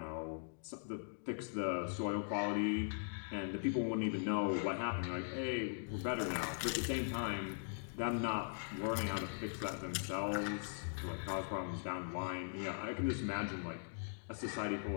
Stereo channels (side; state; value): right; silent; digital silence